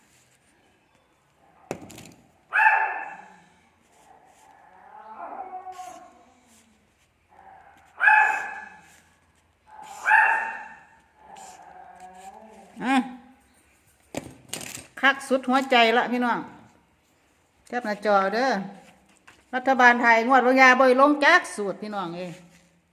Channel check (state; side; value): identical; both; correlation 1.00